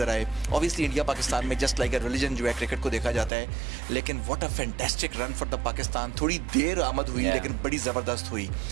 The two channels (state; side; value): drops out; left; at 3.3 s